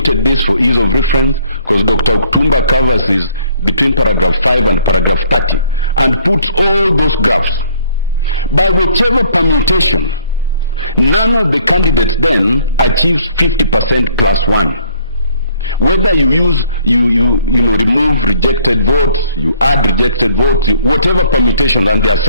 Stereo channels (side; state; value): both; inverted; correlation -0.61